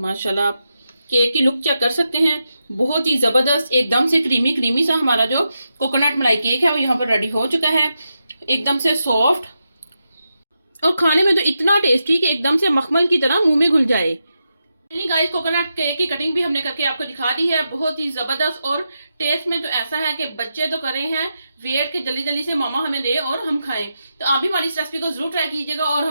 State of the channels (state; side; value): inverted; both; correlation -0.87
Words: आप केक की लुक चेक कर सकते हैं, बहुत ही ज़बरदस्त। एकदम से क्रीमी क्रीमी सा हमारा जो कोकोनट मलाई केक है वो यहाँ पर रेडी हो चुका है। एकदम से सॉफ्ट और खाने में तो इतना टेस्टी कि एकदम से मखमल की तरह मुंह में घुल जाए। गाइस कोकोनट केक की कटिंग भी हमने करके आपको दिखा दी है, बहुत ही जबरदस्त। और टेस्ट में तो ऐसा है कि बच्चे तो कर रहे हैं वेट के जल्दी जल्दी से मामा हमें दे और हम खाएं। तो आप भी हमारी इस रेसिपी को जरूर ट्राई कीजिएगा और